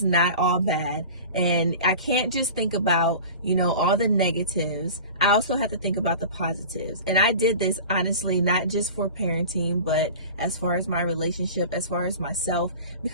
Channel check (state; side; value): inverted; both; correlation -0.37